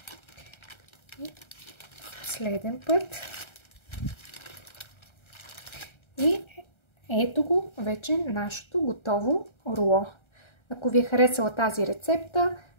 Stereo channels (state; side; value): late; right; 1.3 ms